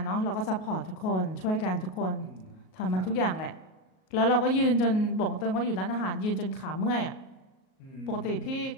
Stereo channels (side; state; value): right; late; 38 ms